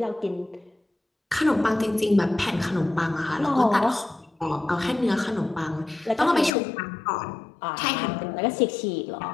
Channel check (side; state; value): right; drops out; at 6.5 s